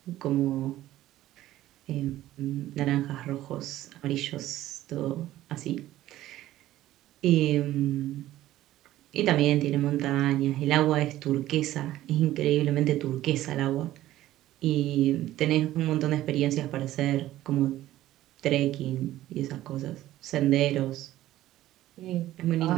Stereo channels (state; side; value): quieter; left; 14.5 dB